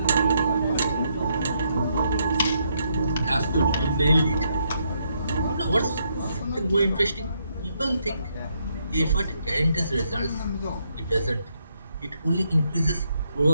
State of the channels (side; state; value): both; inverted; correlation -0.76